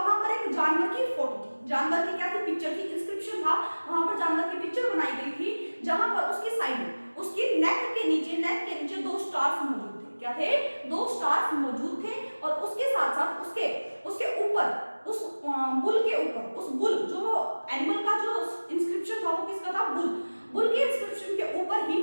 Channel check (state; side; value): inverted; both; correlation -1.00